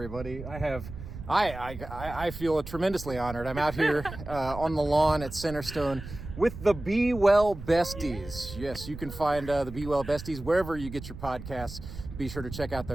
I feel tremendously honored. I'm out here on the lawn at Centerstone with the Be Well Besties. Yes, you can find the Be Well Besties wherever you get your podcasts. Be sure to check out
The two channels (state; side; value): noise; right; rumble, 11 dB below the sound